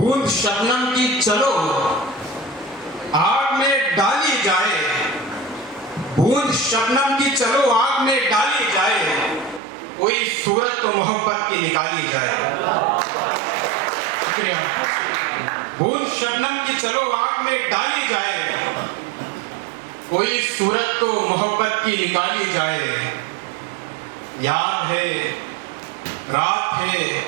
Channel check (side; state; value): left; drops out; at 9.6 s